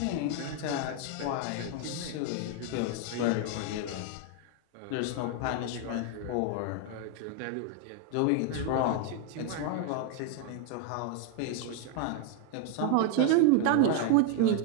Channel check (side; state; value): both; different; correlation 0.01